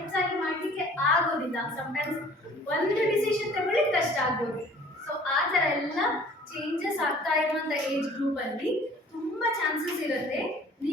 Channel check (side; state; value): both; normal; correlation 0.51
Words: ಮಾಡಲಿಕ್ಕೆ ಆಗೋದಿಲ್ಲ. ಸಮ್ಟೈಮ್ಸ್ ಒಂದು ಡಿಸಿಷನ್ ತಗೊಳ್ಳಿಕ್ಕೆ ಕಷ್ಟ ಆಗ್ಬೋದು. ಸೊ ಆ ಥರ ಎಲ್ಲ ಚೇಂಜಸ್ ಆಗ್ತಾ ಇರುವಂಥ ಏಜ್ ಗ್ರೂಪಲ್ಲಿ ತುಂಬ ಚಾನ್ಸಸ್ ಇರುತ್ತೆ